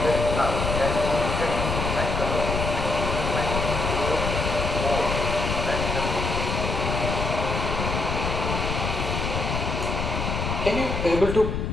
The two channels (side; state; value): left; noise; rumble, 2 dB below the sound